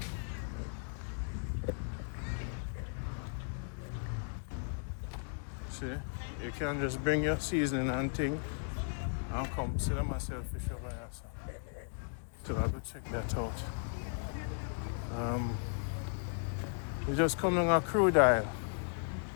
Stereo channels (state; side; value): silent; right; digital silence